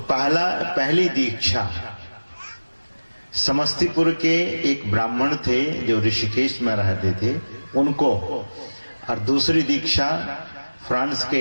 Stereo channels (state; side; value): inverted; both; correlation -1.00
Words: पहली दीक्षा समस्तीपुर के एक ब्राह्मण थे जो ऋषिकेश में रहते थे उनको, और दूसरी दीक्षा फ्रांस के